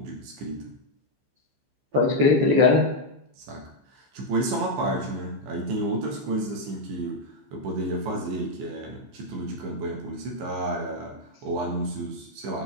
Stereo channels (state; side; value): late; left; 15 ms